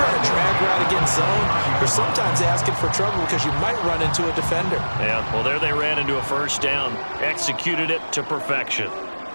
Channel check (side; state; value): both; inverted; correlation -1.00